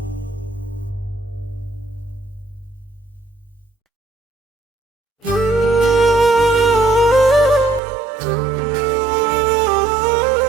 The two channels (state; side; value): drops out; left; at 7.8 s